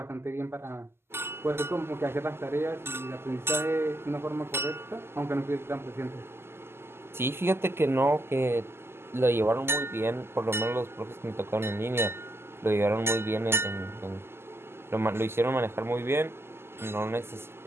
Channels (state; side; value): late; left; 0.12 ms